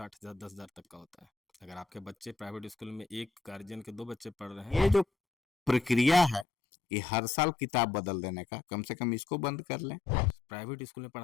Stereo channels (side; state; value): right; drops out; at 6.5 s